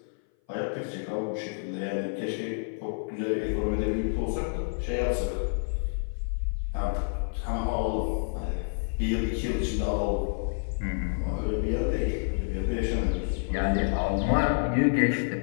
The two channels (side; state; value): right; silent; 57 dB below the other